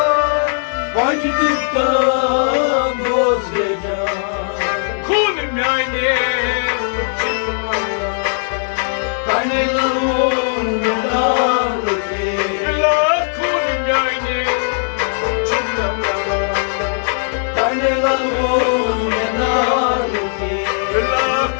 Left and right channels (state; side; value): silent; right; 67 dB below the other